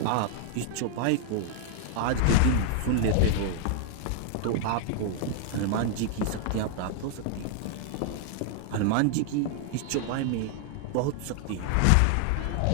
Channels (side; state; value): both; different; correlation 0.00